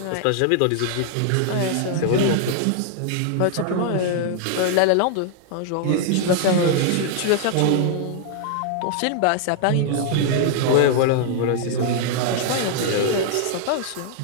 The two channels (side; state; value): both; different; correlation -0.01